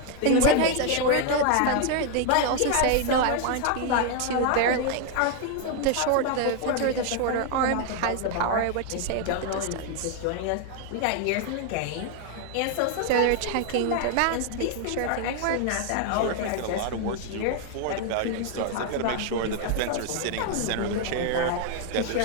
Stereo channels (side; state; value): both; different; correlation 0.00